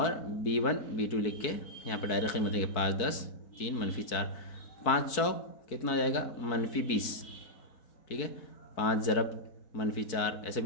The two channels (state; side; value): late; right; 4.6 ms